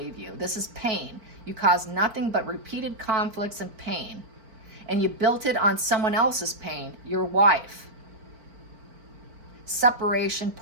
you. This is pain. You caused nothing but repeated conflicts and pain. And you built it on someone else's pain, your wife. Separation,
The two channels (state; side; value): late; left; 4.4 ms